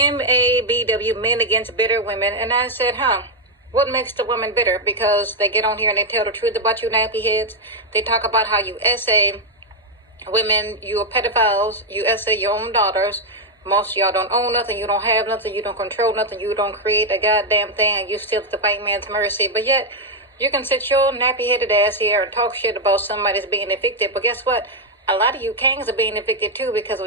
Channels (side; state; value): both; normal; correlation 0.01